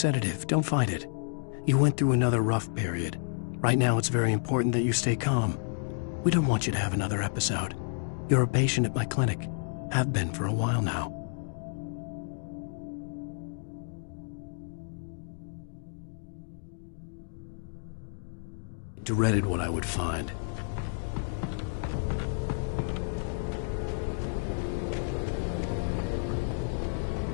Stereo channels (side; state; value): right; silent; digital silence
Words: Don't fight it. You went through another rough period. Right now, it's very important that you stay calm. We don't want you to have another episode. You're a patient at my clinic. Have been for a while now. Dreaded what I would find.